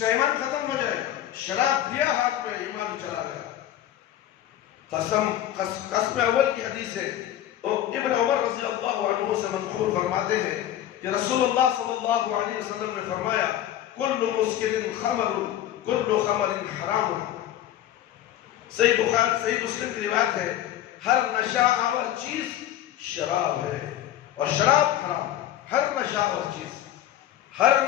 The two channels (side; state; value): right; quieter; 12.2 dB